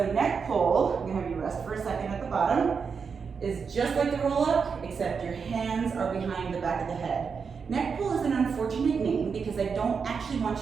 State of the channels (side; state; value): left; quieter; 5.8 dB